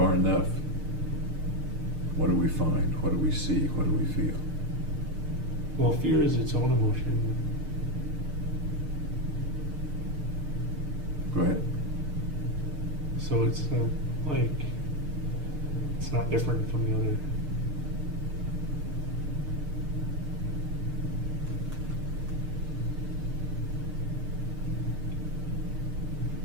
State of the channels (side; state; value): left; late; 6.6 ms